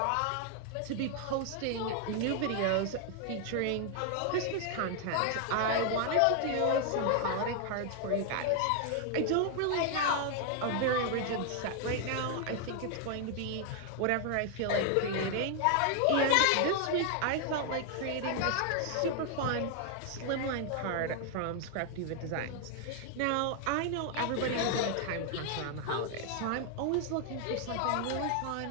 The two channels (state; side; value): different; both; correlation 0.00